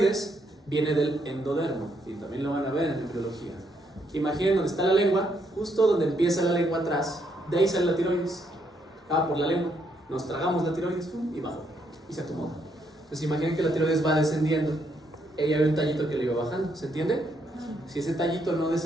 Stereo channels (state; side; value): normal; both; correlation 0.74